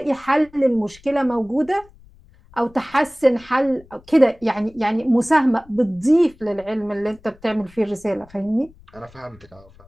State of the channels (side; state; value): left; noise; rumble, 26 dB below the sound